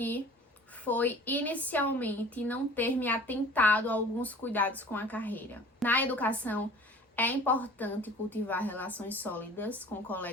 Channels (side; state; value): both; normal; correlation 0.46